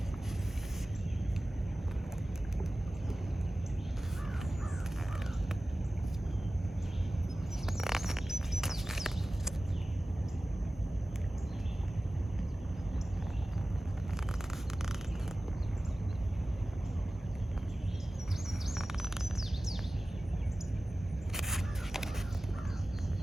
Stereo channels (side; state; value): both; normal; correlation 0.97